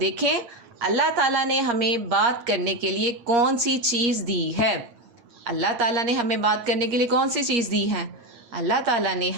अल्लाह ताला ने हमें बात करने के लिए कौन सी चीज़ दी है। अल्लाह ताला ने हमें बात करने के लिए कौन सी चीज़ दी है? अल्लाह ताला ने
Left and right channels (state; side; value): late; left; 8.5 ms